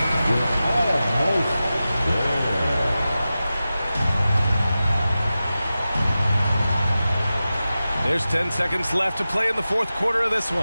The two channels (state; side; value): inverted; both; correlation -0.94